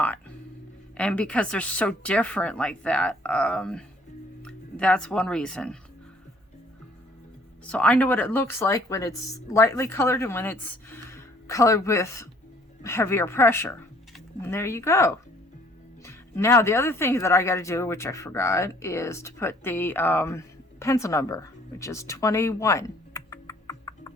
And because they're so different like that, that's one reason. So I know what it looks like when it's lightly colored and when it's colored with heavier pressure. And there you go. Now the other thing that I got to do, which I forgot, is to put the pencil number, which is 21.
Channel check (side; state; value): both; normal; correlation 0.59